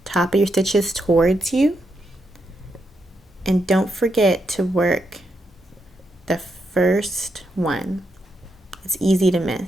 top of your stitches towards you. And don't forget to work the first one. It's easy to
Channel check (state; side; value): normal; both; correlation 0.82